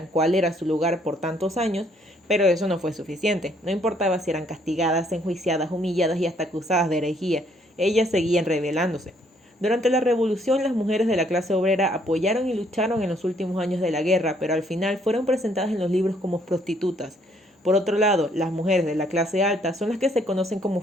cuál era su lugar por tantos años, pero eso no fue suficiente. No importaba si eran castigadas, enjuiciadas, humilladas y hasta acusadas de herejía, ellas seguían rebelándose. Durante la revolución, las mujeres de la clase obrera apoyaron y lucharon en los últimos años de la guerra, pero al final fueron presentadas en los libros como prostitutas. Por otro lado, las mujeres de la clase alta son las que se conocen como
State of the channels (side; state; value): both; normal; correlation 0.66